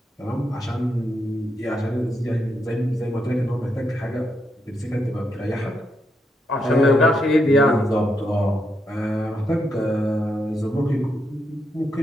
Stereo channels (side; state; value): both; normal; correlation 0.81